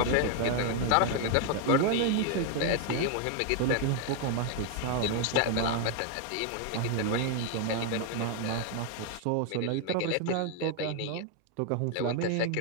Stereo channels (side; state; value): both; different; correlation 0.01